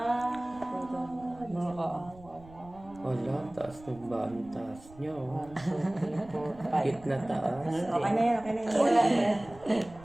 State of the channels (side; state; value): right; noise; rumble, 21 dB below the sound